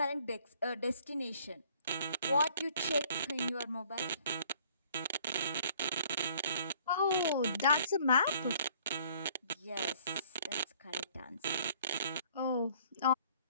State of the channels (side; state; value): both; inverted; correlation -0.58